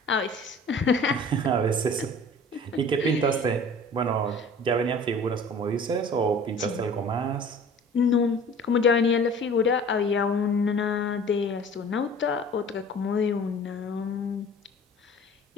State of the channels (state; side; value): normal; both; correlation 0.45